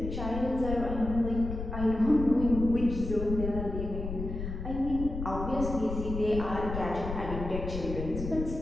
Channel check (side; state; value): left; noise; rumble, 6 dB below the sound